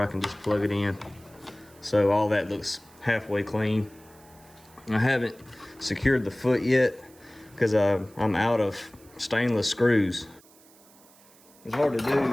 can just plug it in. So all that looks halfway clean. I haven't secured the foot yet because I'm out of stainless screws. It's hard to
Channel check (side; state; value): right; noise; hiss, 26 dB below the sound